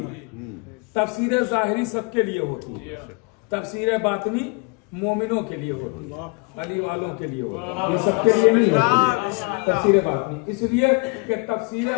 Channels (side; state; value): right; quieter; 30.8 dB